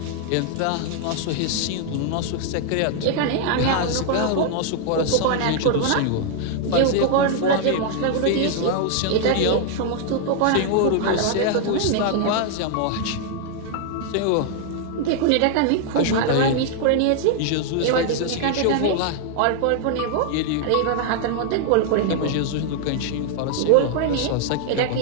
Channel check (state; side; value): different; both; correlation 0.00